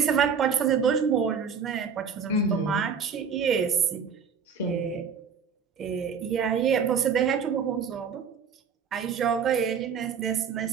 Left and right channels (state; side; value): quieter; left; 6.5 dB